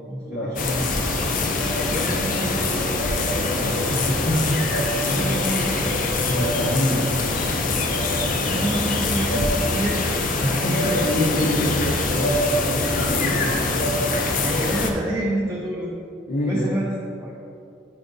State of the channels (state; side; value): normal; both; correlation 0.50